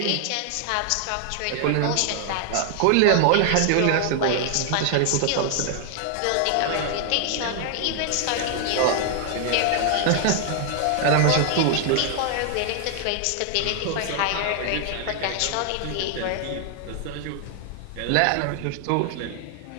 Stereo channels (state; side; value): different; both; correlation 0.00